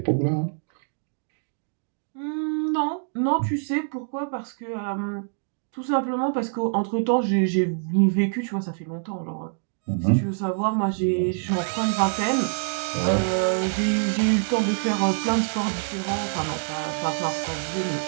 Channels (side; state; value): left; silent; digital silence